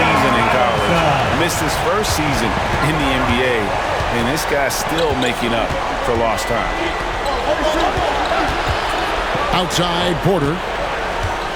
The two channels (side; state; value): both; identical; correlation 1.00